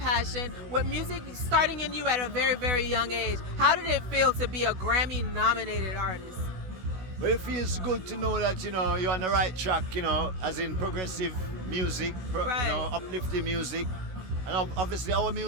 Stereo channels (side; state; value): left; late; 16 ms